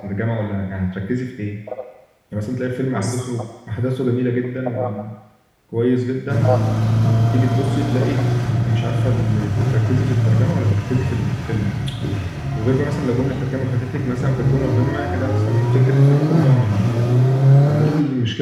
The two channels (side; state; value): both; identical; correlation 1.00